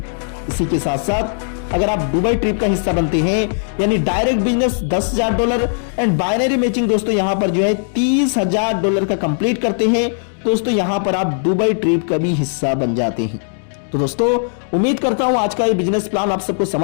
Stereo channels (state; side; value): silent; right; digital silence